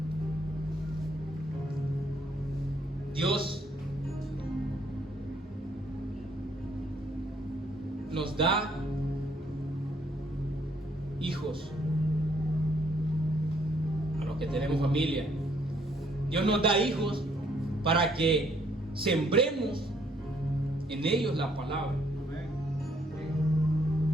Dios nos da hijos a los que tenemos familia. Dios nos da hijos para que sembremos en ellos la palabra.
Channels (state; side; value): normal; both; correlation 0.68